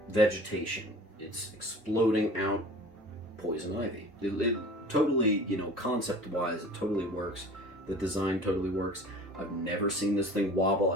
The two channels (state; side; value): normal; both; correlation 0.43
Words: vegetation. It's exploding out Poison Ivy. It totally, concept-wise, it totally works. The design totally works. I've never seen this thing wobble.